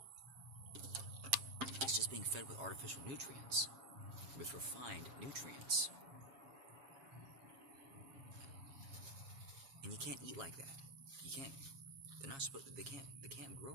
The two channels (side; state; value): left; late; 7.3 ms